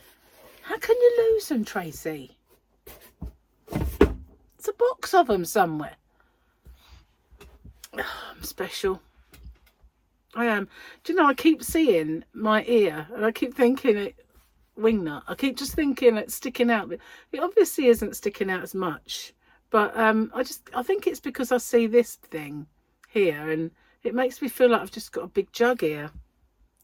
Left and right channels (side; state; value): both; identical; correlation 1.00